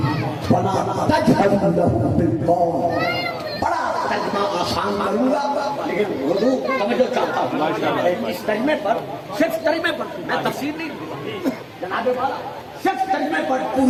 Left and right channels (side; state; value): both; identical; correlation 1.00